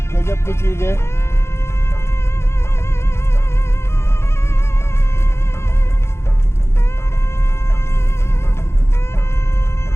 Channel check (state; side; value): late; right; 0.13 ms